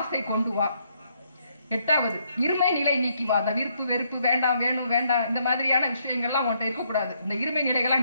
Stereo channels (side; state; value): both; inverted; correlation -0.73